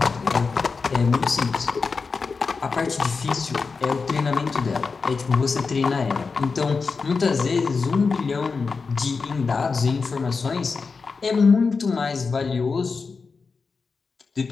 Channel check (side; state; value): right; quieter; 4.7 dB